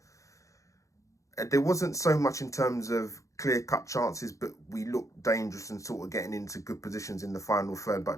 wasn't so much in terms of clear-cut chances, but we looked dangerous and sort of getting into good positions in the final third.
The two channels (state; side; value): late; right; 0.15 ms